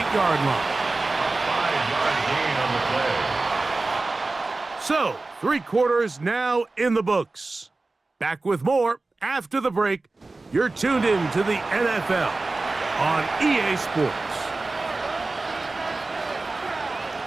line. 5-yard gain on the play. So, 3 quarters now in the books. Back with more after the break. You're tuned in to the NFL on EA Sports.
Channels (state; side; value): quieter; left; 3.4 dB